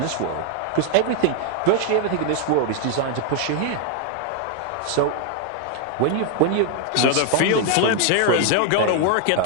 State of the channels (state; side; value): different; both; correlation 0.00